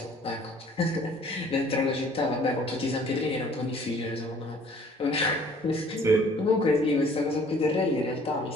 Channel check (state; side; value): normal; both; correlation 0.55